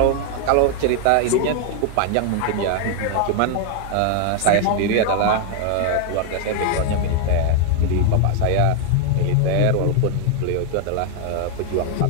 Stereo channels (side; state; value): both; different; correlation 0.00